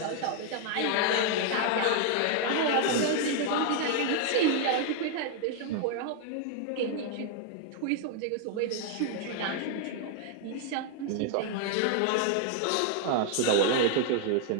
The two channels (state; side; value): different; both; correlation 0.00